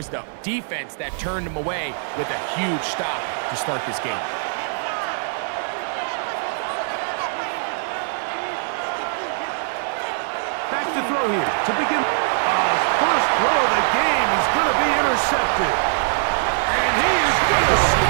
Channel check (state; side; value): silent; left; 64 dB below the other